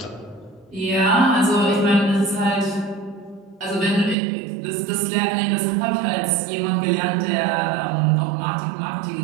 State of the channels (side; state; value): left; drops out; at 4.2 s